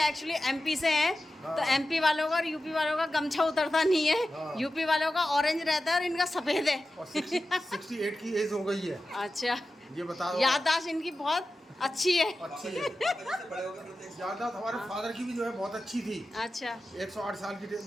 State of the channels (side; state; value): both; normal; correlation 0.93